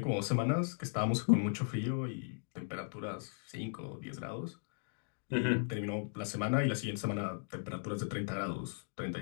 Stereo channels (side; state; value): right; silent; digital silence